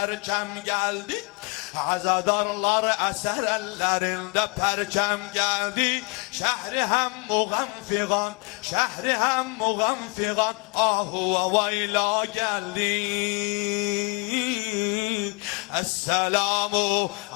geldi. Azadarlar eser ellerinde perçem geldi. Şehri hem muğenfigan, şehri hem muğenfigan, ahu ve vayla geldi. Esselamu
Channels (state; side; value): quieter; right; 31.1 dB